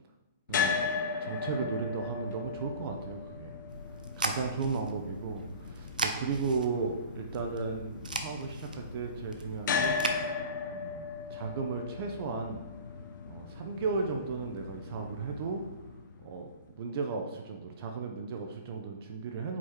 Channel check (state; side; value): inverted; both; correlation -0.37